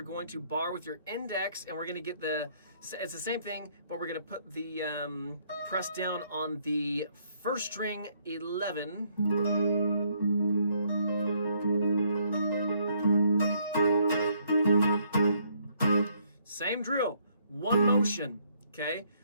going to bar with your index and we're going to get it's the same thing, but we're going to put the press down on the 1st string 11. Same drill, one motion, okay?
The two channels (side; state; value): both; inverted; correlation -0.69